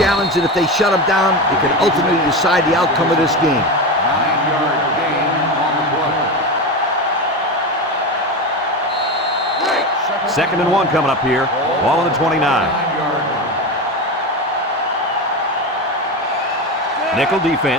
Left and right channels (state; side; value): normal; both; correlation 0.20